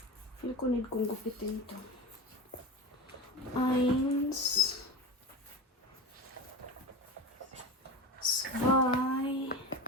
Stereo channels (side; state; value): both; normal; correlation 0.27